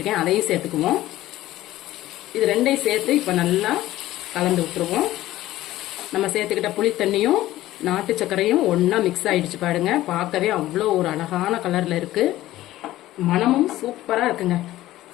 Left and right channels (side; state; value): right; quieter; 15.4 dB